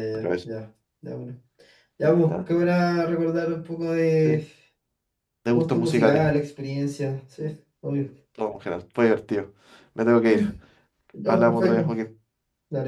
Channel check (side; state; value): both; identical; correlation 1.00